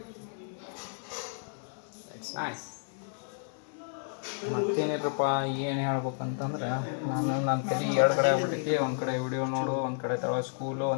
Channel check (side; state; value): right; silent; digital silence